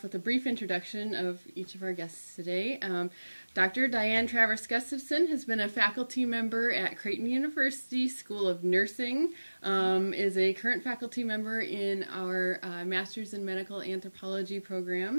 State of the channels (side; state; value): both; inverted; correlation -1.00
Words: with a brief introduction of each of our guests today. Dr. Dianne Travers Gustafson has been a faculty member at Creighton University School of Nursing, is a current faculty member in our Master's in Medical Anthropology